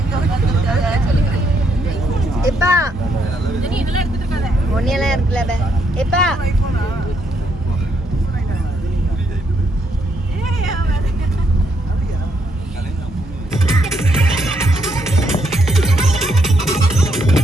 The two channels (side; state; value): both; normal; correlation 0.74